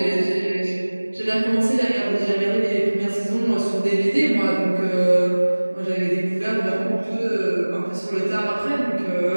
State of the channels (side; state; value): both; inverted; correlation -1.00